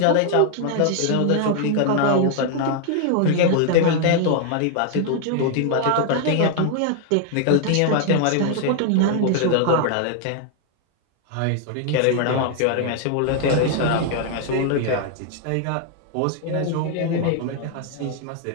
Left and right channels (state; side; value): different; both; correlation 0.00